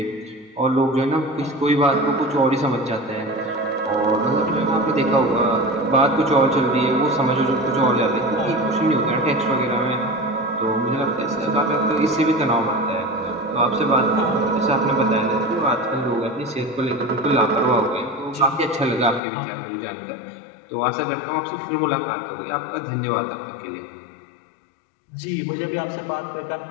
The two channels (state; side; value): drops out; right; at 19.2 s